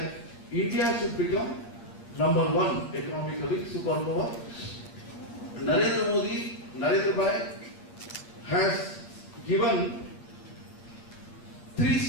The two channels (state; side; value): late; right; 8.7 ms